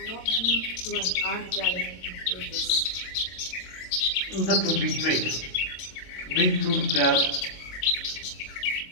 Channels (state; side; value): late; right; 22 ms